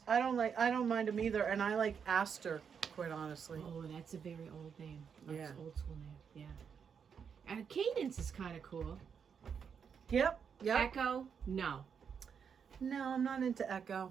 I don't mind him either, and I like Aster, quite honestly. Oh, that's a very old name. That's Yeah. old school name. Yeah. And Cadence is kind of cool. Yep. Echo, no. No, I'm not into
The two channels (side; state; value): left; quieter; 6.9 dB